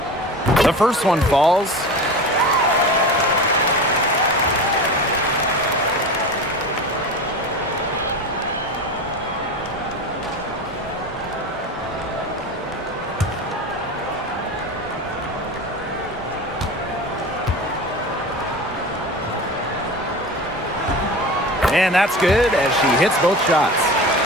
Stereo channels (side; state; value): both; normal; correlation 0.30